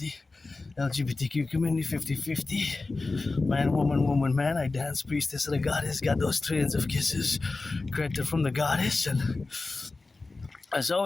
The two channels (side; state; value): right; quieter; 3.5 dB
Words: LGBTQ community, 50-50. Man, woman, man. I dance priestess of the goddess, got those trillions of kisses granted from the goddess, and there's